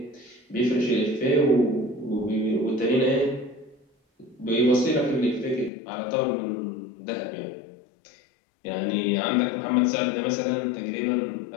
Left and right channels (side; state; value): right; drops out; at 5.7 s